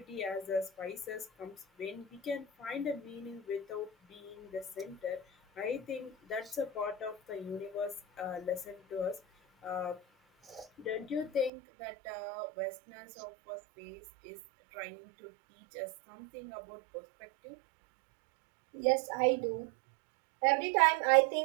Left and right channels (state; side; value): drops out; left; at 11.5 s